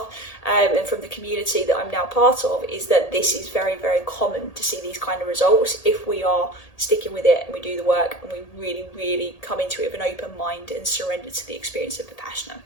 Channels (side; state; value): right; late; 1.8 ms